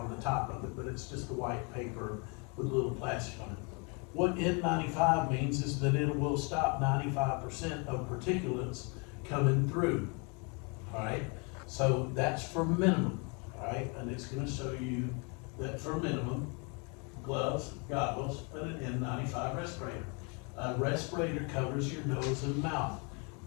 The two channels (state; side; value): quieter; right; 33.5 dB